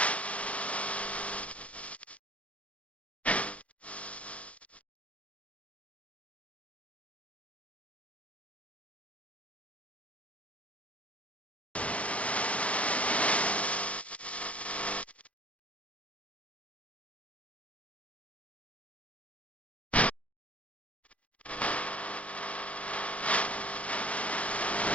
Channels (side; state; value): right; late; 0.064 ms